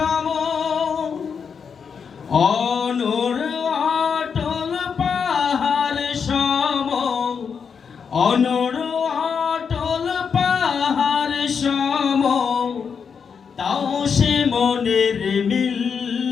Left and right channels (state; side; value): quieter; right; 6.3 dB